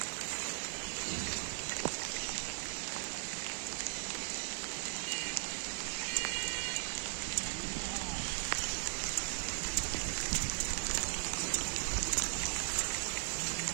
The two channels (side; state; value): left; silent; digital silence